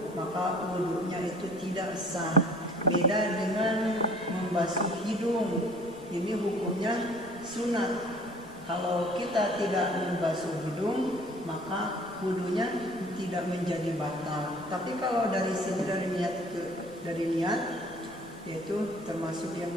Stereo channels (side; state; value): left; noise; rumble, 25 dB below the sound